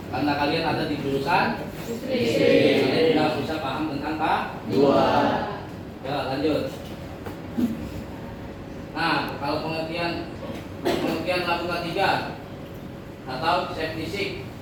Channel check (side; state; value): both; identical; correlation 1.00